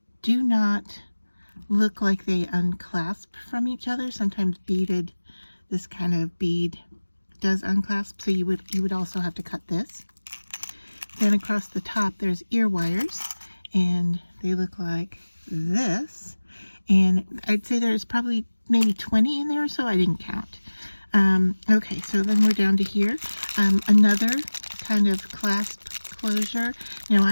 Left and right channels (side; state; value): both; inverted; correlation -1.00